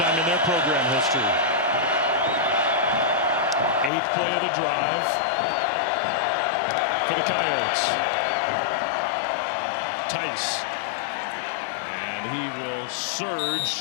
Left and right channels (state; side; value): drops out; right; at 3.9 s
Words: in their program history. 8th play of the drive for the Coyotes. Tice. And he will